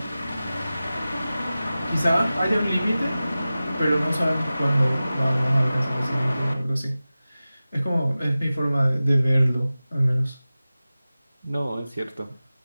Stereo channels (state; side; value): inverted; both; correlation -0.96